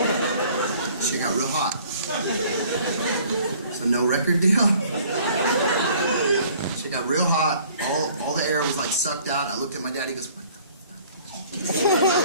Shit got real hot. So no record deal. Shit got real hot. All the air was like sucked out. I looked at my dad. He goes, what the fuck?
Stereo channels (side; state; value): both; inverted; correlation -0.55